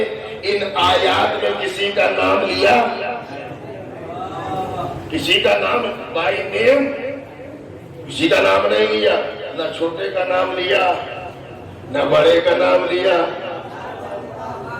ان آیات میں کسی کا نام لیا؟ کسی کا نام بائی نیم کسی کا نام نہیں لیا، نہ چھوٹے کا نام لیا نہ بڑے کا نام لیا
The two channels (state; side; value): identical; both; correlation 1.00